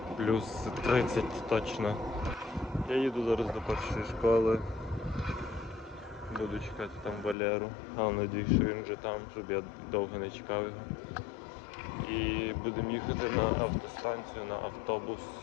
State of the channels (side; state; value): right; drops out; at 7.4 s